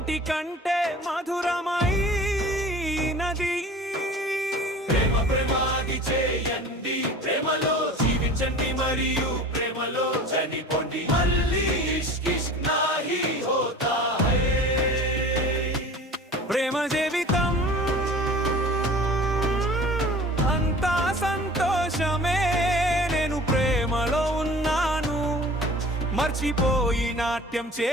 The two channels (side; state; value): both; normal; correlation 0.42